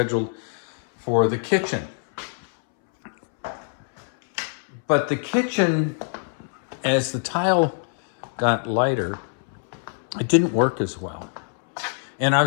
for the kitchen. But the kitchen, as the tile got lighter, it didn't work as well. And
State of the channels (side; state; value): right; silent; 63 dB below the other